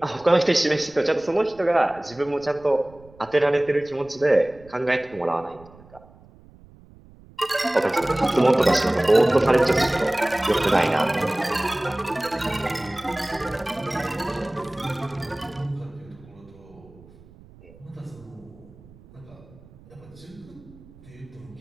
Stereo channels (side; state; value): right; noise; rumble, 24 dB below the sound